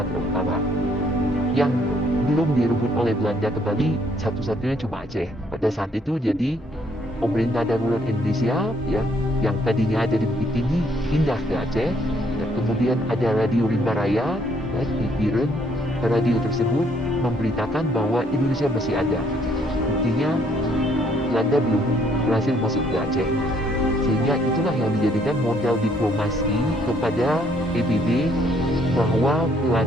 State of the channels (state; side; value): normal; both; correlation 0.67